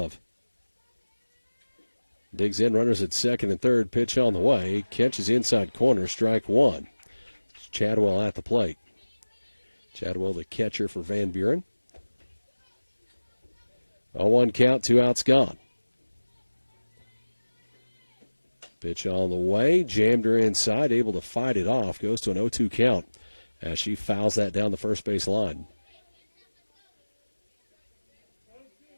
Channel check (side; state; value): both; inverted; correlation -1.00